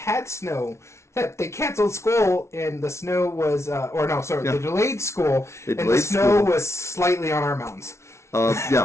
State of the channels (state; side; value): late; right; 0.13 ms